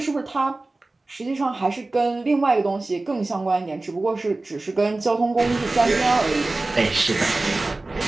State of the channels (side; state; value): left; quieter; 3.1 dB